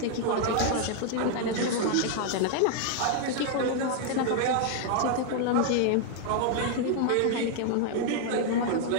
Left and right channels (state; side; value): different; both; correlation 0.00